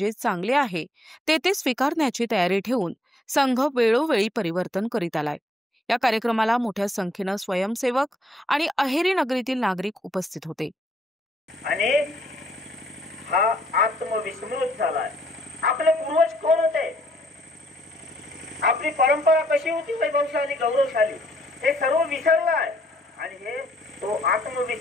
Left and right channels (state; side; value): normal; both; correlation 0.69